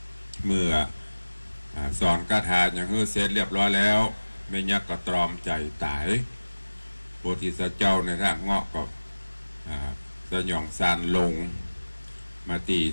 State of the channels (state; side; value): inverted; both; correlation -1.00